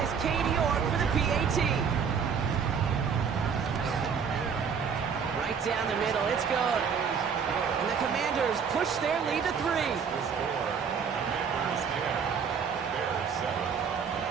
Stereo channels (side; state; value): left; quieter; 6.5 dB